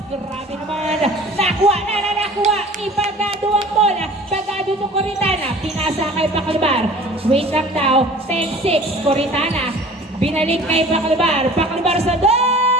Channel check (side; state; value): both; normal; correlation 0.45